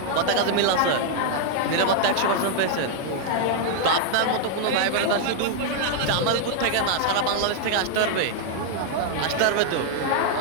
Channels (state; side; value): different; both; correlation 0.00